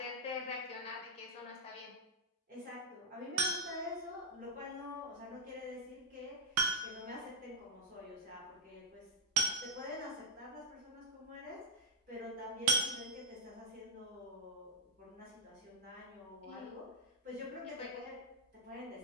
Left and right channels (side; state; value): both; normal; correlation -0.01